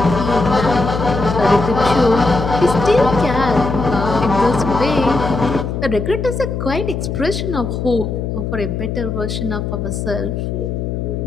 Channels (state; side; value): noise; left; hum, 3 dB below the sound